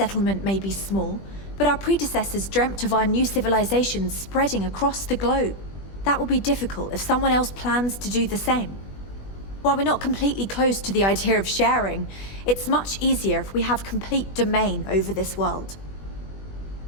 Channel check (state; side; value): late; right; 20 ms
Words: may be small, but our predecessors dreamt of our new civilization spreading across the globe. That will be difficult if someone else plans to do the same. While we're not completely close to the idea of sharing, it's much easier if we have complete domain over this world.